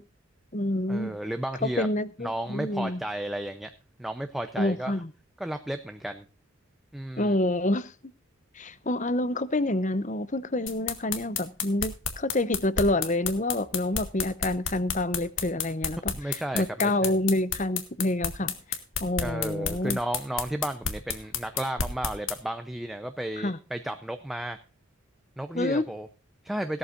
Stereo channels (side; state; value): both; normal; correlation 0.52